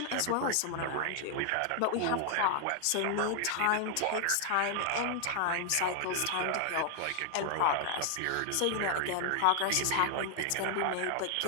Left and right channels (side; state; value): both; different; correlation 0.00